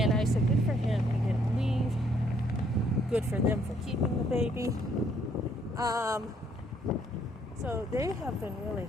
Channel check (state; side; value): normal; both; correlation 0.67